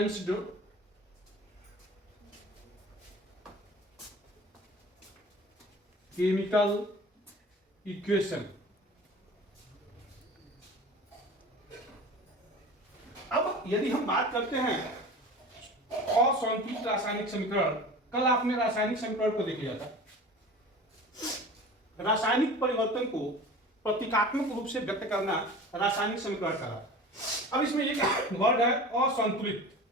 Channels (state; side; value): normal; both; correlation 0.38